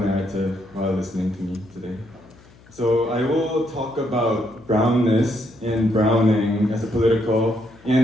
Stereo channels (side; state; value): left; noise; hum, 25 dB below the sound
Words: while listening to me today. So I will talk about brownness and browning as a political